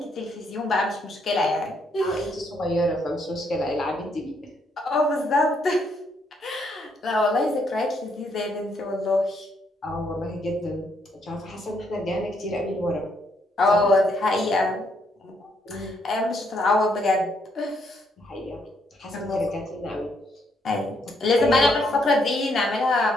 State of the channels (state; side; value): normal; both; correlation 0.73